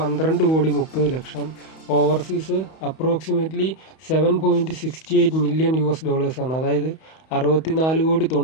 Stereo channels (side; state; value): right; late; 31 ms